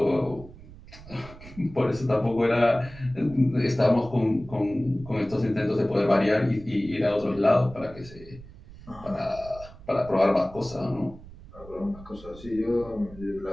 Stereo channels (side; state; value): right; noise; rumble, 18 dB below the sound